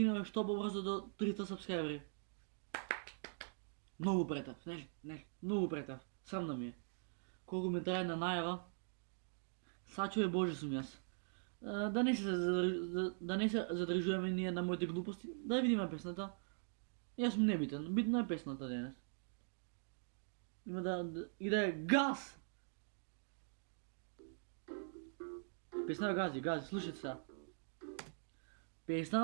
што побрзо до 300 сабскрайбери. Многу претав, нели, многу претав. Срамно ми е. Колку ми трае на најава, сачуве Боже сум јас. Да не се задржуваме ние на моите глупости, да видиме песната. Јас сум небитен, битна е песната денес. Има да е газ! Песна гази, слушайте сега.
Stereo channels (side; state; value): left; silent; digital silence